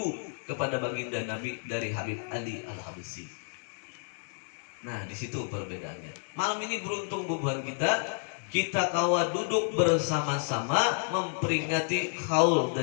kepada baginda Nabi dari Habib Ali Al-Habsyi. Nah, di situ perbedaannya. Malam ini beruntung bubuhan kita kawa duduk bersama-sama memperingati haul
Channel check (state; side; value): silent; right; 55 dB below the other